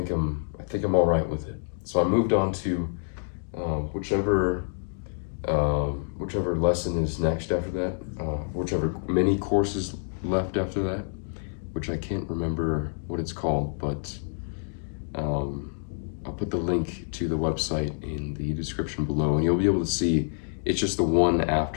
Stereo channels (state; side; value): silent; right; digital silence